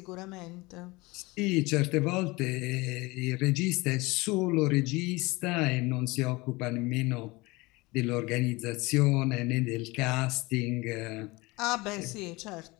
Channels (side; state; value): right; quieter; 23.1 dB